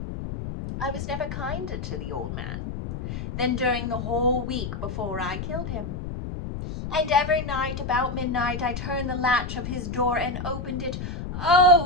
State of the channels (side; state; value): left; noise; rumble, 6 dB below the sound